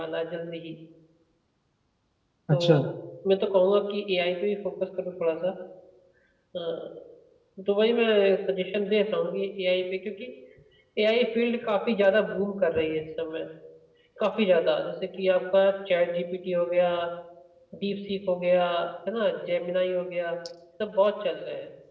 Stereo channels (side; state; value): both; identical; correlation 1.00